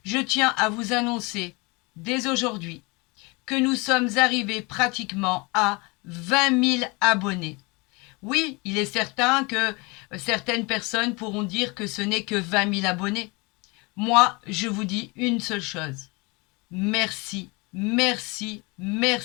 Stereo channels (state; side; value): quieter; right; 27.1 dB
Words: je tiens à vous annoncer dès aujourd'hui que nous sommes arrivés pratiquement à 20 000 abonnés. Oui, il est certain que certaines personnes pourront dire que ce n'est que 20 000 abonnés. Moi, je vous dis une seule chose. Merci, merci,